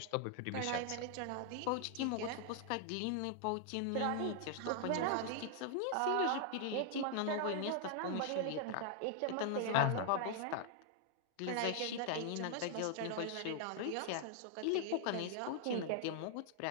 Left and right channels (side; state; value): both; different; correlation 0.00